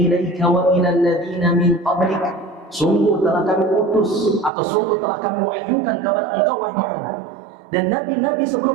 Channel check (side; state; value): left; drops out; at 4.5 s